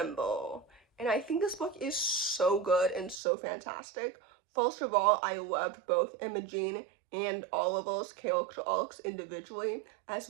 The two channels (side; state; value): left; drops out; at 3.2 s